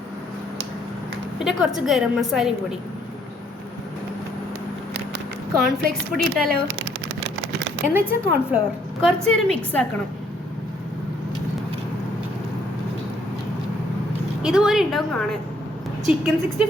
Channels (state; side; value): normal; both; correlation 0.67